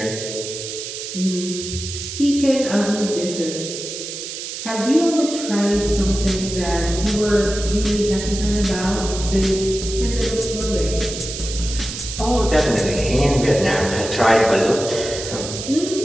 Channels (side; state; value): right; noise; hiss, 8 dB below the sound